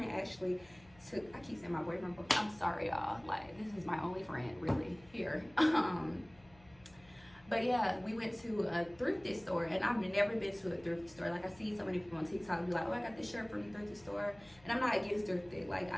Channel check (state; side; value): noise; left; hum, 26 dB below the sound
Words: actually took, I keep saying my boyfriend, but I'm sorry y'all, like this is my only friend really here. But yeah, we went to a thrifty store and I've never been to a thrifty store. Like I see so many people on TikTok be like, oh, I got this shirt from the thrifty store. And I'm not against thrifty. Like